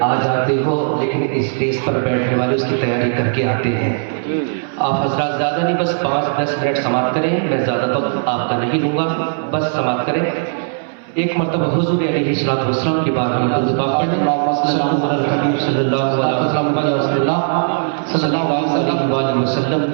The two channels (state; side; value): silent; left; 62 dB below the other